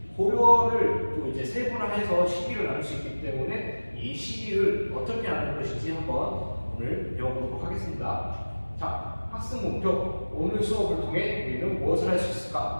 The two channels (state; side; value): inverted; both; correlation -1.00